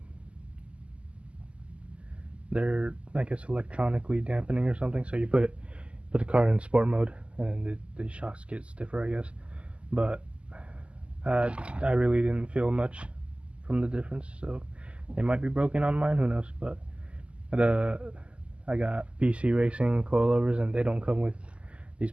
they're, I guess, electronically dampening or something. So you put the car in sport mode, and the shocks get stiffer, I guess. But I really didn't feel much from the difference, so they might be broken on mine. Who knows? But I got BC Racing coilovers, and they don't come with these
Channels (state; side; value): late; left; 0.056 ms